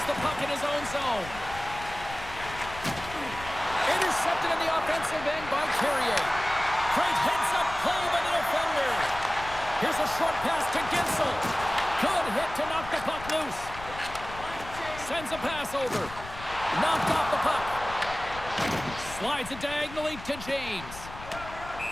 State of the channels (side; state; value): left; noise; rumble, 14 dB below the sound